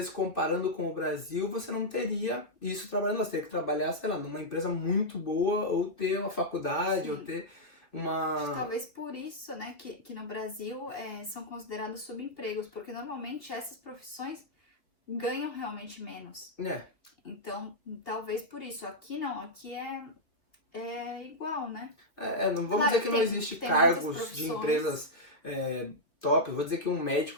comparando com o Brasil você não teria isso trabalhando, você teria que trabalhar, sei lá, numa empresa muito boa ou ter uma faculdade, Sim. ou ter uma... Talvez por isso, né, que no Brasil são considerados subempregos, porque normalmente essas profissões ganham realmente menos. Então, talvez por isso. Aqui não, aqui é igual, né? Não vamos Claro, dizer que não existe tem cargos de empresas top. Eu vou dizer que um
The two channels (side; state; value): right; late; 2.8 ms